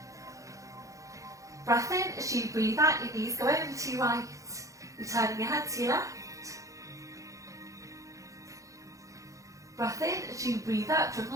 Breath in as you breathe out, your knees go over to your right, returning your head to your left. Breath in as you breathe out, from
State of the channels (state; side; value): late; left; 0.16 ms